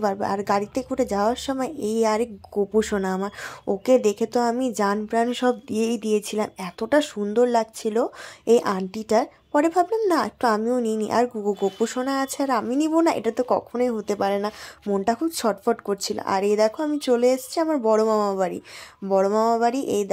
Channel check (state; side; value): identical; both; correlation 1.00